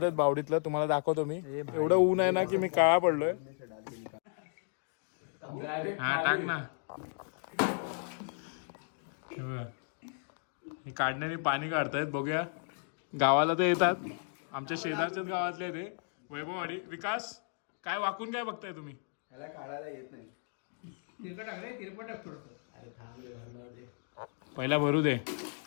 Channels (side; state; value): right; silent; 55 dB below the other